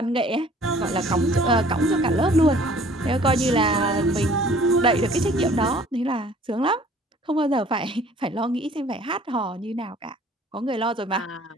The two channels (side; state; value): both; normal; correlation 0.53